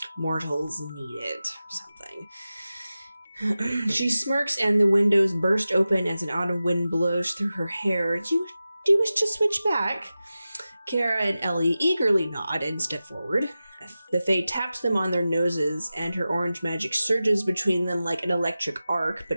mortals need it or something. She smirks and the windows burst open as an autumn wind blows through her hair. Do you wish to switch back? Kara and Ellie eagerly nod and step forward. The Fae taps them on their noses, and her orange magic surges between them like an electric arc,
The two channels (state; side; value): inverted; both; correlation -0.94